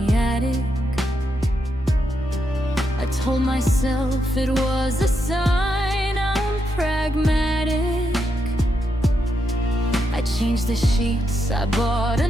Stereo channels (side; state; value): both; normal; correlation 0.82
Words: attic. I told myself it was a sign I'm pragmatic. I changed the sheets, I bought a